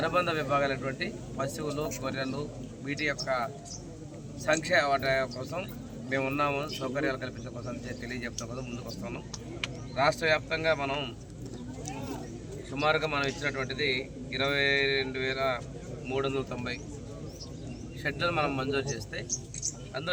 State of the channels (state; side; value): identical; both; correlation 1.00